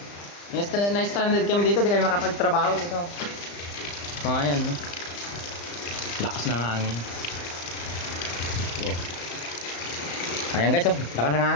Na-stranded kami dito, di kami makapagtrabaho dito. Mga yan, no? Lakas ng hangin. Oh. Ayan guys, oh. Lakas ng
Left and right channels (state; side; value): late; right; 35 ms